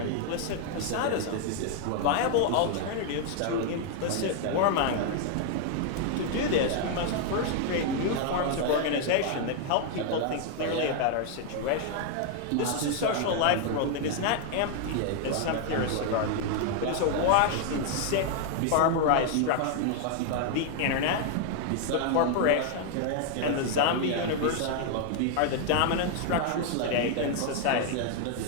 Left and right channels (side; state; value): both; different; correlation 0.00